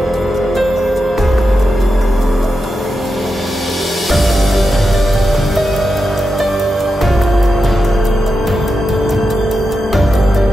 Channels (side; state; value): both; normal; correlation 0.89